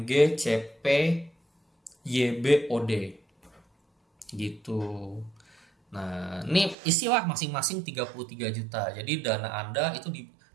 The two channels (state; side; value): drops out; left; at 6.8 s